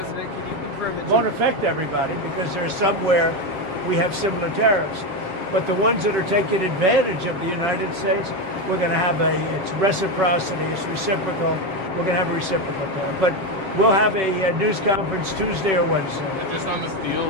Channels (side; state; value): left; late; 7.4 ms